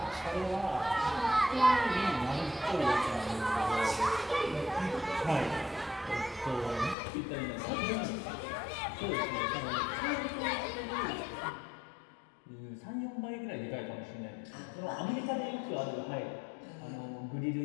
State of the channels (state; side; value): drops out; right; at 7.0 s